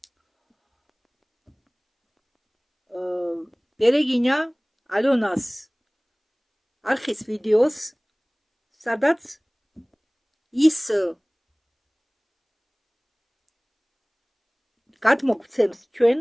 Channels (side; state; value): both; identical; correlation 1.00